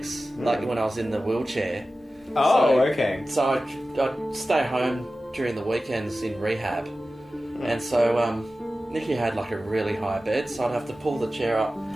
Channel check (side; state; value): both; normal; correlation 0.95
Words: like when I was in the wheelchair. Oh, So- okay. So I'd stay home during the weekends in rehab, and so Nikki had like a really high bed, so I'd have to pull the chair up,